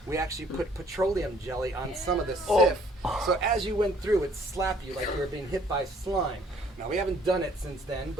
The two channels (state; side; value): normal; both; correlation 0.60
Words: we actually put petroleum jelly on some of the Sif. So as you went through, it slapped you like you were being hit by slime. Now, we haven't done it since then,